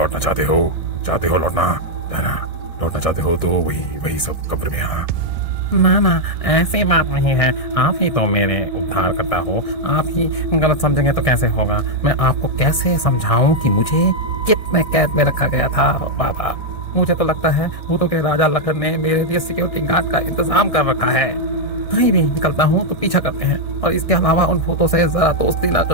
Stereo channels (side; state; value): right; late; 1.6 ms